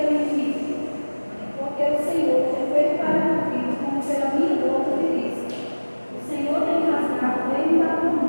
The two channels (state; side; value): inverted; both; correlation -1.00